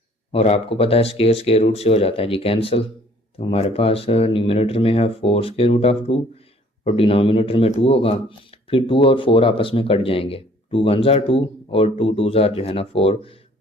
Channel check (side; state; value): both; normal; correlation 0.57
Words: और आपको पता है स्क्वायर रूट से हो जाता है जी कैंसिल। तो हमारे पास न्यूमरेटर में है 4 √2 और डिनोमिनेटर में 2 होगा। फिर 2 और 4 आपस में कट जाएंगे, 2 1 2 और 2 2 जो है ना 4।